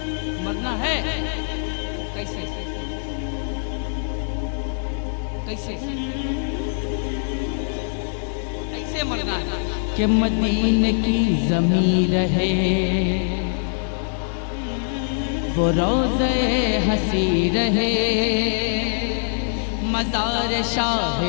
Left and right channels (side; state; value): right; silent; digital silence